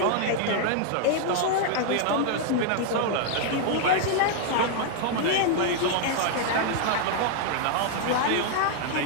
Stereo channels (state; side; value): different; both; correlation 0.00